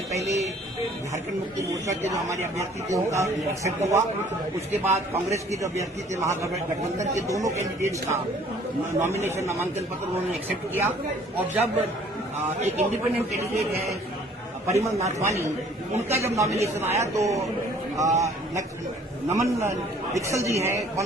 पहले झारखंड मुक्ति मोर्चा के जो हमारे अभ्यर्थी थे उनका एक्सेप्ट हुआ। उसके बाद कांग्रेस के जो अभ्यर्थी थे महागठबंधन के दोनों कैंडिडेट्स का नॉमिनेशन नामांकन पत्र उन्होंने एक्सेप्ट किया। और जब एक इंडिपेंडेंट कैंडिडेट है परिमल नाथवानी, उनका जब नॉमिनेशन आया तो नमन दीक्षल जी हैं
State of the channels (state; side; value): normal; both; correlation 0.56